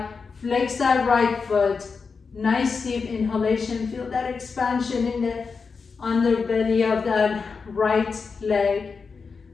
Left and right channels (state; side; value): quieter; right; 5.1 dB